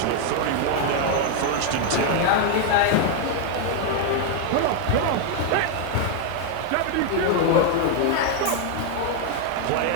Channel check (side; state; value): both; different; correlation 0.00